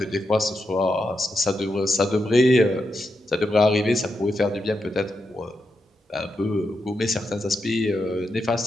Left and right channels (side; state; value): both; normal; correlation 0.85